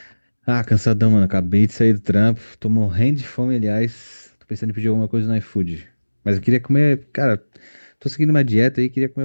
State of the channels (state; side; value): inverted; both; correlation -1.00